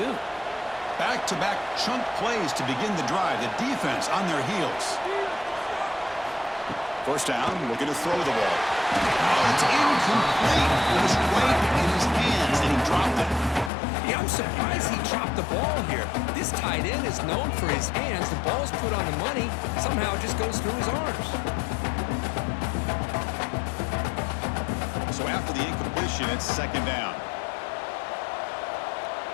Back-to-back chunk plays to begin the drive. The defense on their heels. First down, looking to throw the ball. Oh, it's incomplete. It was right in his hands, and he dropped it. Yeah, I'm surprised he dropped the ball here. This tight end is known for his hands. The ball's put on the money. Somehow it just goes through his arms. So after the incompletion, it's second down.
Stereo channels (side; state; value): right; drops out; at 13.7 s